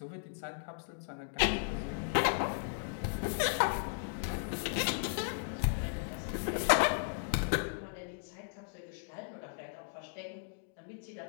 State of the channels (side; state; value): right; silent; digital silence